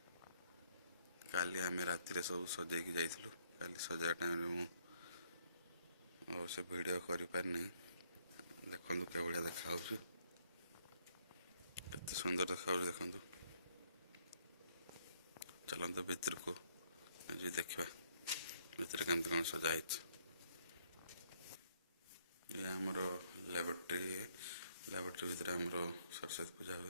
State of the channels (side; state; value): both; inverted; correlation -0.68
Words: काली आम राति सब सजेक जाइलु काली सजा टाइम से वीडियो कर पारनी देखु के भाया देखा केते सुंदर देखा देखु चलते भीतर को देखा भीतर केमती कौन सजाई ये आमर लैबोरेटरी भितर आमर सरस्वती पूजा